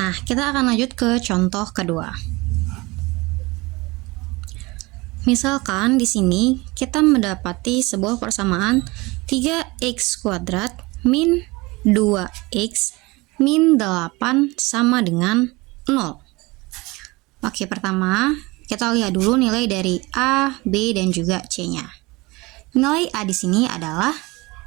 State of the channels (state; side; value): quieter; left; 23.2 dB